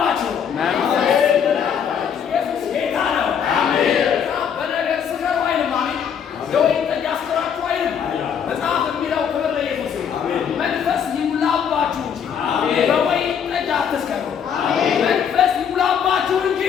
ኢየሱስ ጌታ ነው። በነገር ስከሩ አይልም። አሜን። የወይን ጠጅ አስከራችሁ አይልም። መጽሐፍ የሚለው ክብር ለኢየሱስ ይሁን። መንፈስ ይሙላባችሁ እንጂ በወይን ጠጅ አትስከሩ። መንፈስ ይሙላባችሁ እንጂ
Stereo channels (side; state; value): right; quieter; 7.8 dB